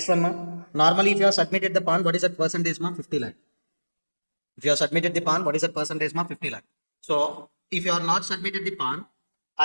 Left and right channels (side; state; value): both; inverted; correlation -1.00